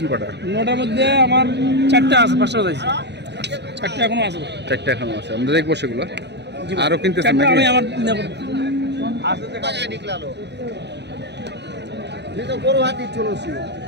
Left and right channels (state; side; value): late; left; 0.50 ms